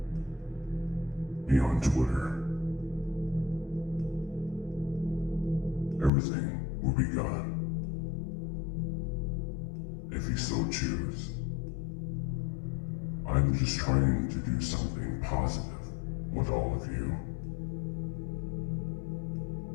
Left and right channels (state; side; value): drops out; right; at 6.1 s